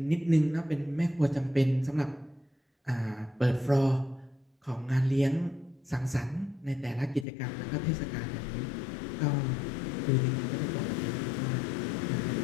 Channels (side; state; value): right; drops out; at 7.2 s